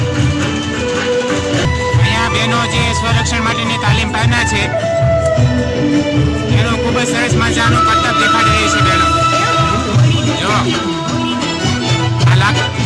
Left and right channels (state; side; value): identical; both; correlation 1.00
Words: સ્વરક્ષણ માટેની તાલીમ પામના છે એનું ખૂબ જ સરસ મજાનું કરતબ દેખાડી રહી છે બહેનો. જો આ